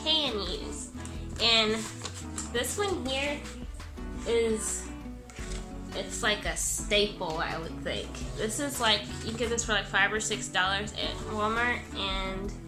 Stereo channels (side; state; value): both; identical; correlation 1.00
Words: can use. And this one here it's like a staple, I would think. This is like, you get this for like $5 or $6 at Walmart, and